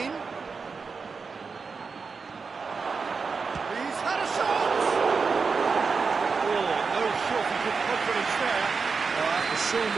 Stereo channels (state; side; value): quieter; left; 5.0 dB